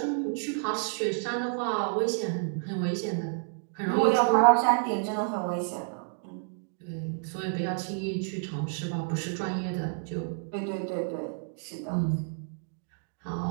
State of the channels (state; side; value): silent; left; digital silence